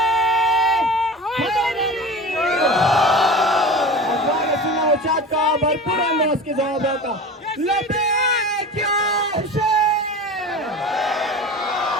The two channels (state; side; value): normal; both; correlation 0.33